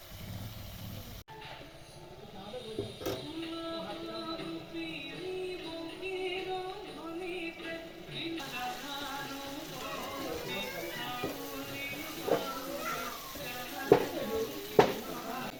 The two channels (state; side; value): identical; both; correlation 1.00